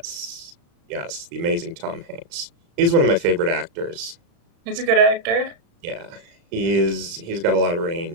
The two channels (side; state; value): left; late; 35 ms